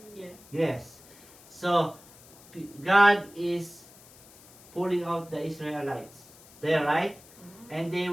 Yeah. Yes. So God is pulling out the Israelites. There, right? And they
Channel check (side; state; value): left; noise; hiss, 23 dB below the sound